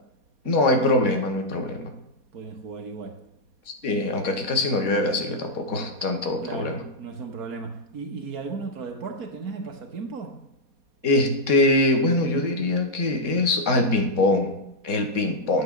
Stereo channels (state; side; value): late; left; 4.2 ms